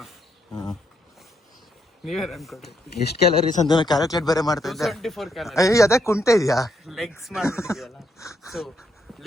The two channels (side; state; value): both; normal; correlation 0.76